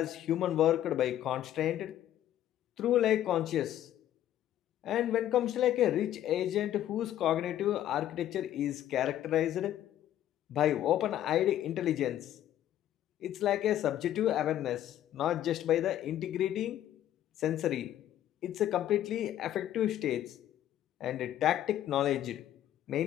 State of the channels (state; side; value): quieter; right; 12.0 dB